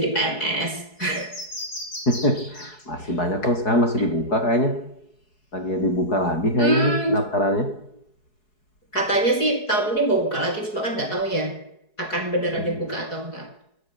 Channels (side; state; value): right; late; 4.7 ms